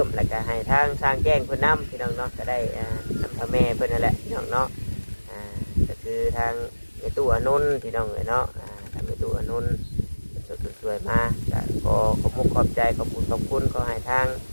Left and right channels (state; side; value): inverted; both; correlation -1.00